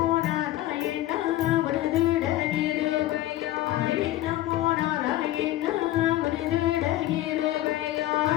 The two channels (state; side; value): quieter; right; 15.0 dB